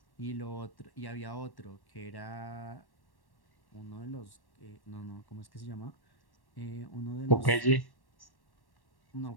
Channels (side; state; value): right; late; 1.1 ms